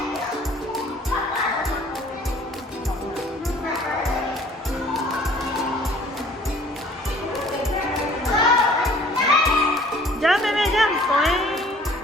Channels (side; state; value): both; normal; correlation 0.53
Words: Jump, baby, jump.